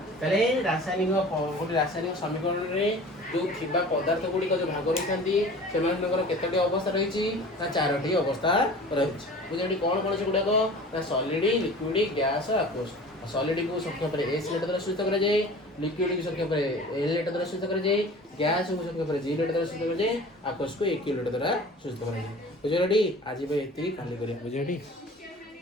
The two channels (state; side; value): normal; both; correlation 0.41